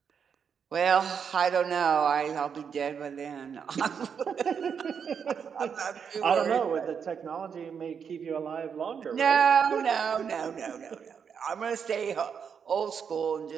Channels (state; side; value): quieter; left; 6.9 dB